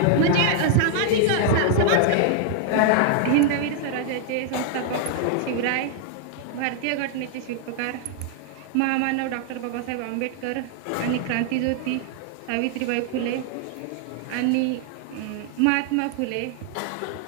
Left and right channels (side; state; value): both; different; correlation 0.00